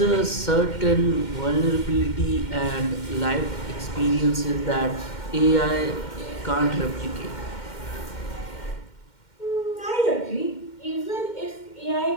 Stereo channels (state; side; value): late; right; 2.1 ms